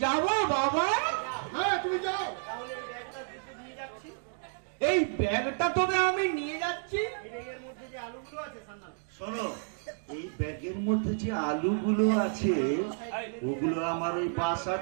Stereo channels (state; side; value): silent; left; 57 dB below the other